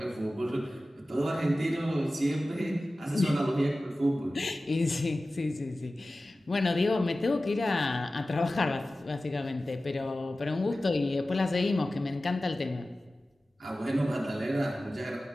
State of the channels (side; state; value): both; normal; correlation 0.95